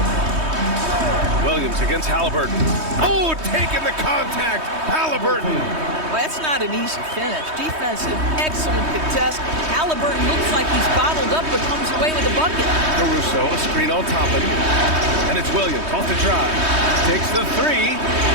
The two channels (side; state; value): left; late; 3.2 ms